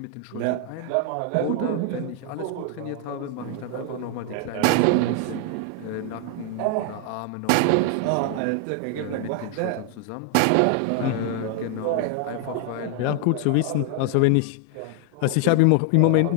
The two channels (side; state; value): both; different; correlation 0.00